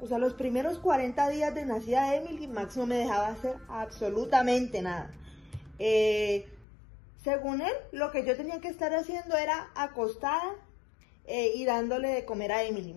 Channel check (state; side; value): drops out; right; at 6.7 s